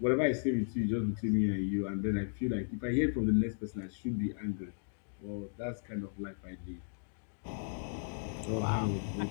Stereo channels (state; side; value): silent; right; digital silence